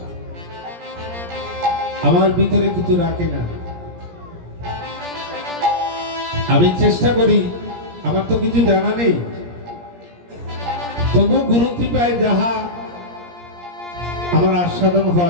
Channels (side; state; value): left; late; 17 ms